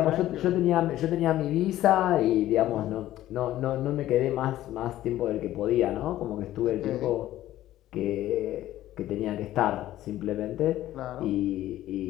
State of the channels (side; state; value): right; quieter; 14.1 dB